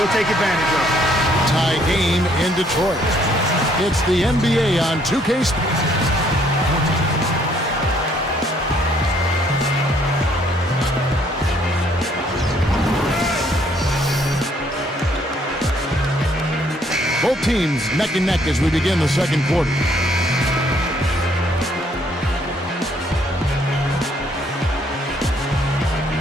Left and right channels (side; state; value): both; normal; correlation 0.66